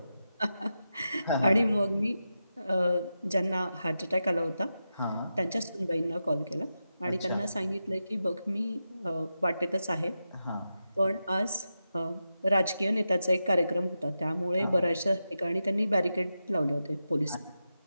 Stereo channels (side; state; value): both; inverted; correlation -0.89